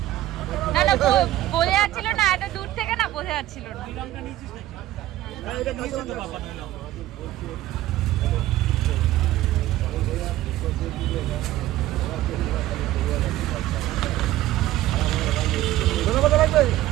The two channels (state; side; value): quieter; left; 14.9 dB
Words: না না বোঝা যাচ্ছিল না এত দূর থেকে না বোঝা যাচ্ছিল না লঙ্কা নিয়েছিস নাকি এটা নিয়েছে তো বাবা নয়